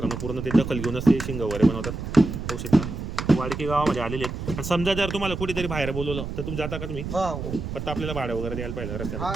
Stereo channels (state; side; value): noise; right; rumble, 6 dB below the sound